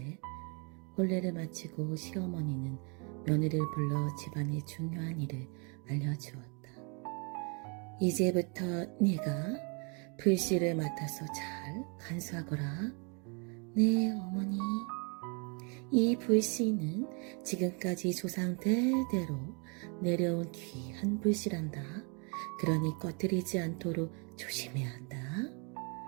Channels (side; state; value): left; quieter; 34.8 dB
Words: 혼례를 마치고 시어머니는 며느리를 불러 집안의 중요한 일을 알려주었다. 이제부터 네가 불씨를 맡아서 잘 간수하거라. 네, 어머니. 이 불씨는 지금까지 조상 대대로 내려온 귀한 불씨란다. 그러니 꺼뜨리지 않도록 조심해야 한다.